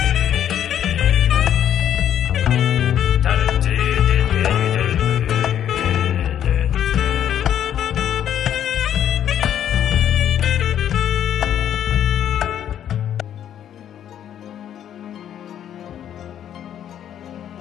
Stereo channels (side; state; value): right; quieter; 10.1 dB